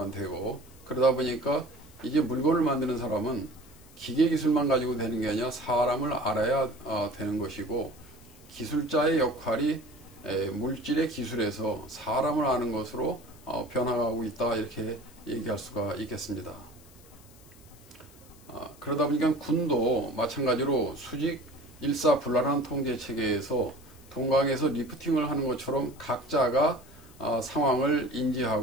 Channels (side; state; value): left; noise; hiss, 25 dB below the sound